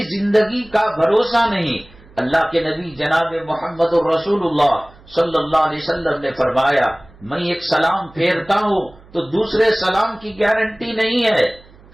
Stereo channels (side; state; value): right; noise; hum, 25 dB below the sound